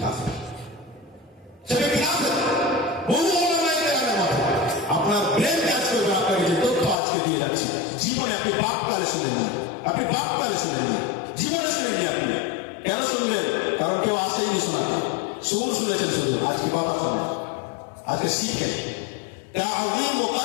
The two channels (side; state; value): right; drops out; at 7.0 s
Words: কাফের, সেই ব্যক্তি কাফের। বহু ওলামায়ে কেরামের মতে। আপনার ব্রেন কাজ করবে, আপনাকে যে তথ্য আজকে দিয়ে যাচ্ছি, জীবনে আপনি বাপকালে শুনেননি, আপনি বাপকালে শুনেননি, জীবনে শুনেননি। আপনি কেন শুনবেন? কারণ কেউ আসেইনি শোনাতে, সুর শুনেছেন শুধু। আজকে কথা শুনে, আজকে শিখেন। তা'যীমু